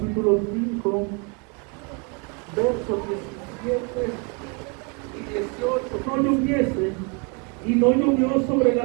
5, versos 17 y 18. No lloviese, y no llovió sobre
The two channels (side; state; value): left; quieter; 34.0 dB